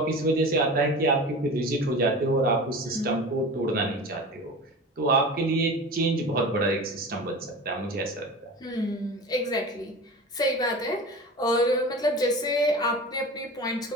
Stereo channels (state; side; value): normal; both; correlation 0.33